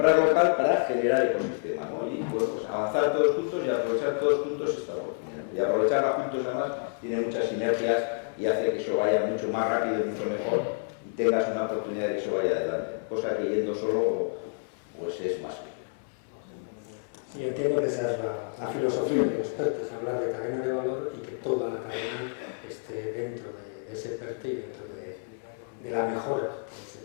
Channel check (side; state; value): right; silent; 59 dB below the other